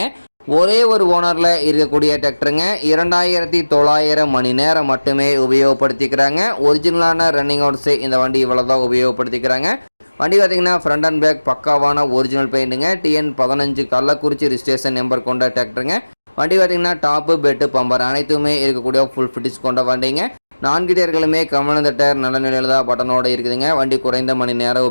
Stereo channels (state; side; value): inverted; both; correlation -1.00